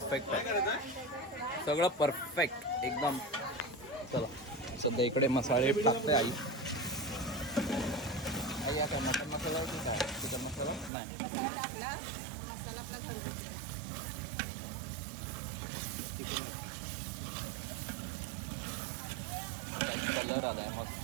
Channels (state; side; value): drops out; left; at 10.9 s